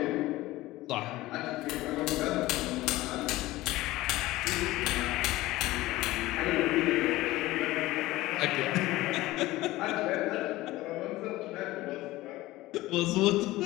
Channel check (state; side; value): quieter; right; 17.9 dB